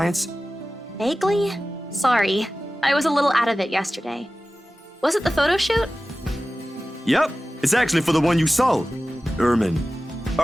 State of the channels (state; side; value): normal; both; correlation 0.96